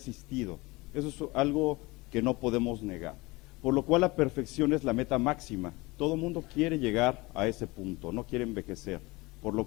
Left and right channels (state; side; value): quieter; right; 23.0 dB